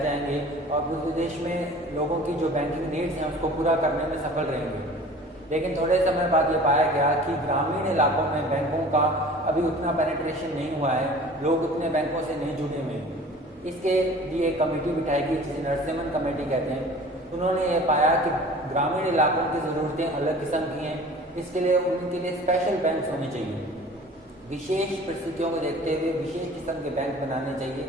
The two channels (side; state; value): both; normal; correlation 0.44